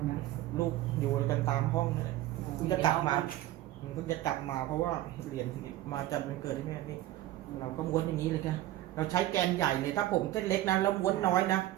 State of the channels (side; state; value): left; quieter; 14.8 dB